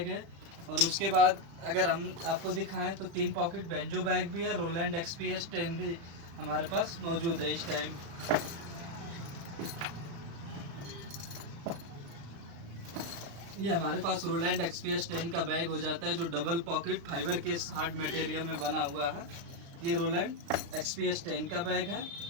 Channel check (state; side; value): late; left; 35 ms